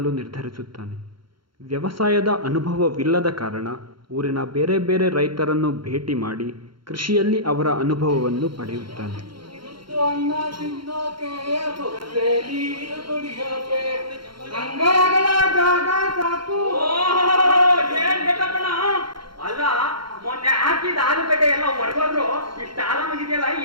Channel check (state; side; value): late; left; 0.73 ms